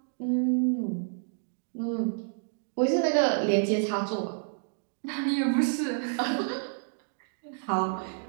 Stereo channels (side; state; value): left; silent; digital silence